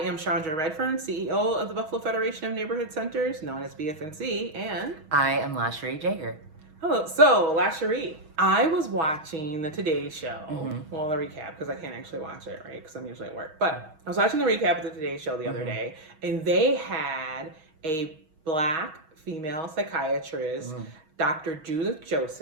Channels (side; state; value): left; late; 6.3 ms